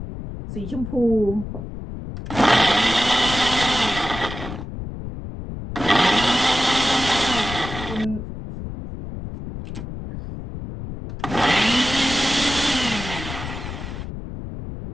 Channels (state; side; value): noise; left; rumble, 9 dB below the sound